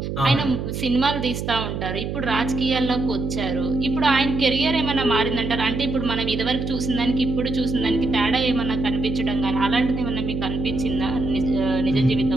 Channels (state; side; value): noise; right; hum, 4 dB below the sound